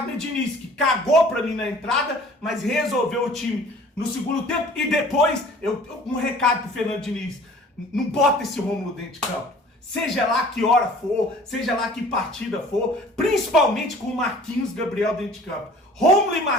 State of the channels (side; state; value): both; normal; correlation 0.49